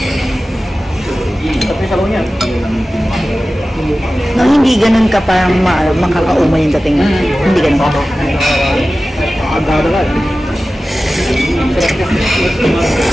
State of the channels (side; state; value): both; normal; correlation 0.95